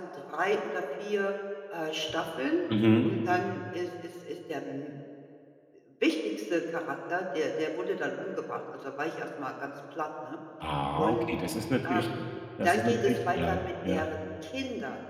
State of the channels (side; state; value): both; identical; correlation 1.00